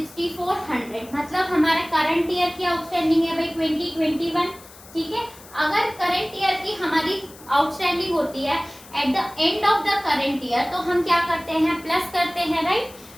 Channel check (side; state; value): left; noise; hiss, 21 dB below the sound